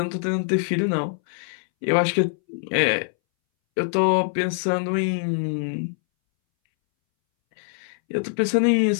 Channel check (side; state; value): right; silent; 62 dB below the other